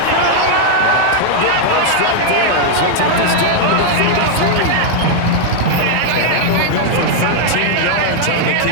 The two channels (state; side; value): different; both; correlation 0.00